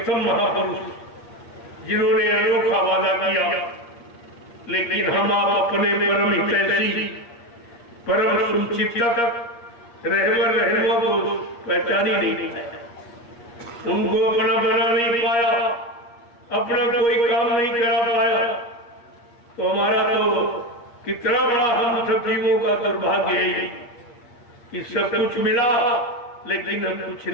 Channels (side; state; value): right; late; 8.5 ms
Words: महापुरुष जिन्होंने अनोखा वादा किया, लेकिन हम आप अपने परम हितैषी, परम सुचिंतक रहबर रहनुमा को पहचान ही नहीं पाया, उनको अपना बना नहीं पाया, अपना कोई काम नहीं करा पाया। तो हमारा तो कितना बड़ा हम सब जीवों का दुर्भाग्य है कि सब कुछ मिला लेकिन हम कुछ